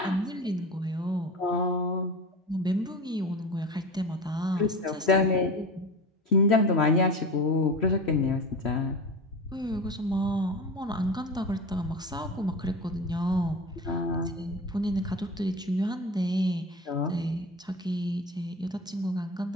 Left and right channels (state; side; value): normal; both; correlation 0.30